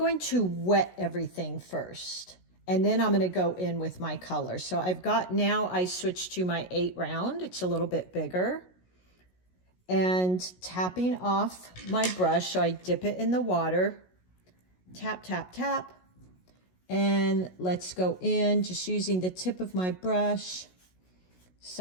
to wet everything first, and then I'm going to go in with my color. So I've got, now I switched to my 8 round. It's a little bit bigger. And tapping off my brush, so I dip it in the water. Tap, tap, tap. And let's go in, just using the tip of my brush,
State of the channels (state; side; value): late; right; 16 ms